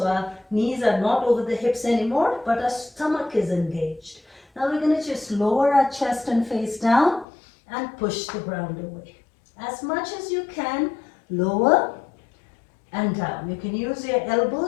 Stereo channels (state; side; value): drops out; right; at 7.2 s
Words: our knees are not over the hips anymore, but our stomach is engaged. Now we're going to just lower our chest and face down and push the ground away. As much as you can, lower and down. You can use your